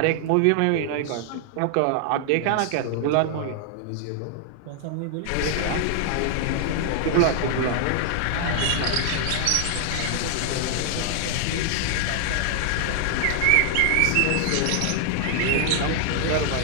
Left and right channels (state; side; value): different; both; correlation 0.00